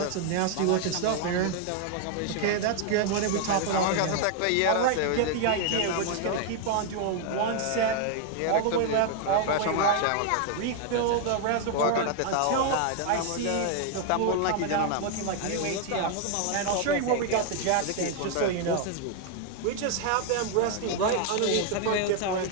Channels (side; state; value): both; different; correlation 0.00